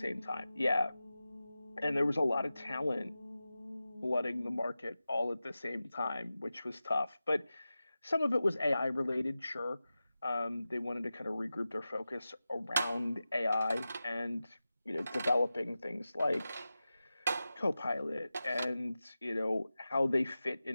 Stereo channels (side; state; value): both; inverted; correlation -0.94